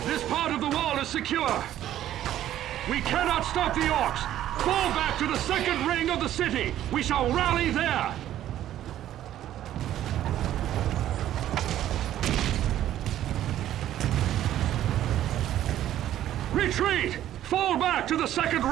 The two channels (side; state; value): left; quieter; 12.3 dB